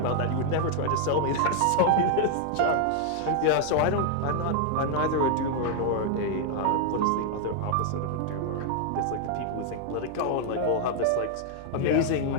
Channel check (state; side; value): different; both; correlation 0.00